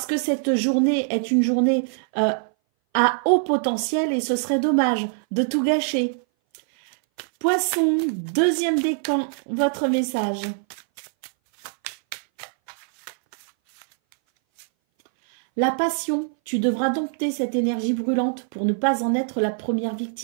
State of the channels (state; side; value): silent; left; 60 dB below the other